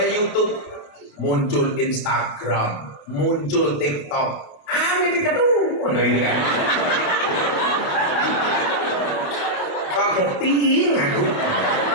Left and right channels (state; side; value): late; right; 28 ms